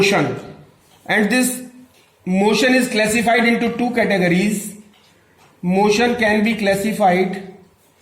and this motion is classified into two categories. Motion can be classified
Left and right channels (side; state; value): both; identical; correlation 1.00